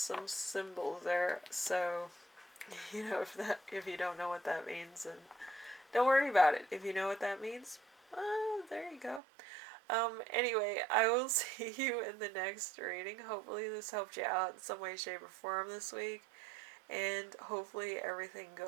symbols there. So if you don't know what that means, then don't worry about it. If you know what that means, there you go. Anyway, I will see you in the next reading. Hopefully this helped you out in some way, shape, or form this week. And hopefully everything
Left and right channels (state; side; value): drops out; left; at 9.2 s